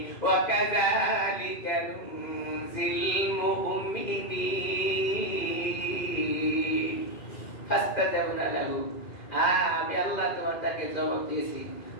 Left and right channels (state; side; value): late; right; 2.5 ms